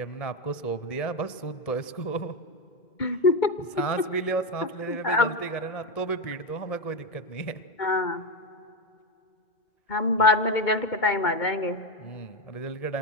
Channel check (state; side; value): late; right; 1.7 ms